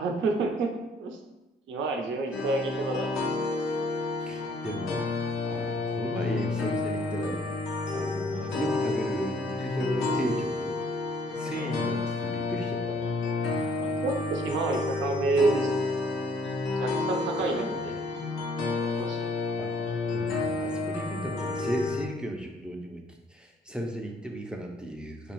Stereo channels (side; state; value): both; normal; correlation 0.61